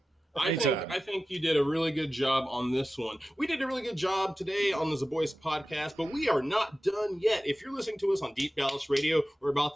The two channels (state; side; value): normal; both; correlation 0.95